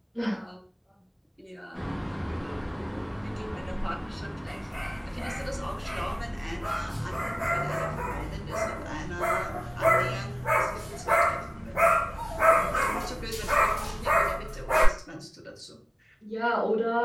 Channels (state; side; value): identical; both; correlation 1.00